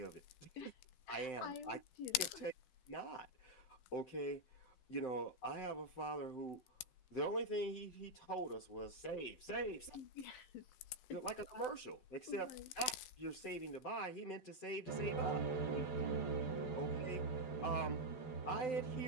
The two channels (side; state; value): right; late; 12 ms